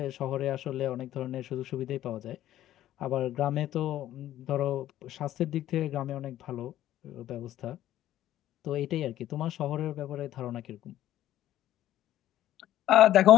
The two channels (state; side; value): quieter; right; 13.1 dB